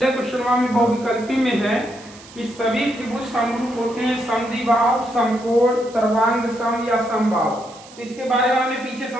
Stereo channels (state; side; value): noise; right; hiss, 21 dB below the sound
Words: क्वेश्चन में बहुविकल्पी में है कि सभी त्रिभुज समरूप होते हैं, समद्विबाहु, समकोण, सर्वांग सम या समबाहु। तो इसके बारे में हमने पीछे